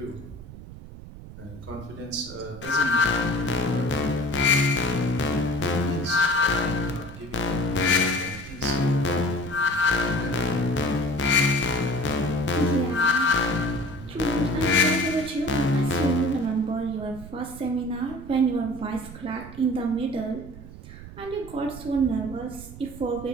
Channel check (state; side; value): noise; right; rumble, 15 dB below the sound